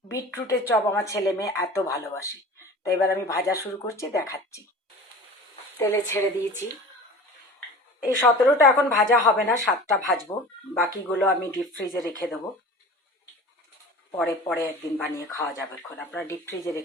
বিটরুটের চপ আমার ছেলে মেয়ে এত ভালোবাসে। তো এবার আমি ভাজা শুরু করছি, দেখাচ্ছি। তেলে ছেড়ে দিয়েছি। এই 17টা এখন ভাজা হবে না, 7টা ভাজবো। বাকিগুলো আমি ডিপ ফ্রিজে রেখে দেবো, পরে পরে একদিন বানিয়ে খাওয়া যাবে। এখন আপনারা ডিপ ফ্রিজে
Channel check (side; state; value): both; normal; correlation 0.39